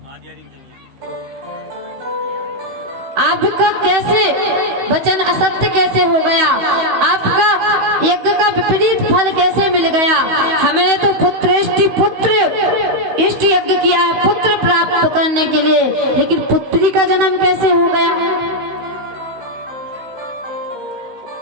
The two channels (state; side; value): late; left; 16 ms